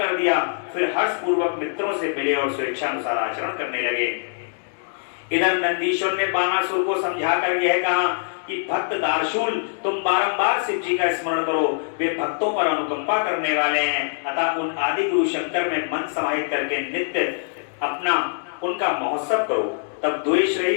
दिया। फिर हर्ष पूर्वक मित्रों से मिले और स्वेच्छानुसार आचरण करने लगे। इधर नंदीश्वर ने बाणासुर को समझाकर यह कहा कि भक्त दार्शूल, तुम बारंबार शिव जी का स्मरण करो, वे भक्तों पर अनुकंपा करने वाले हैं। अतः उन आदि गुरु शंकर में मन समाहित करके नित्य अपना उनका महोत्सव करो। तब द्वेष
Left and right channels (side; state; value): right; silent; digital silence